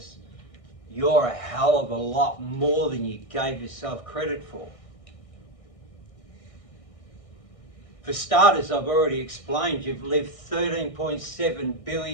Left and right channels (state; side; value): late; right; 1.6 ms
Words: you're a hell of a lot more than you gave yourself credit for. For starters, I've already explained, you've lived 13.7